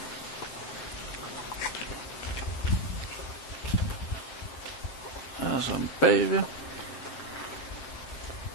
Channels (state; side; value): late; right; 7.5 ms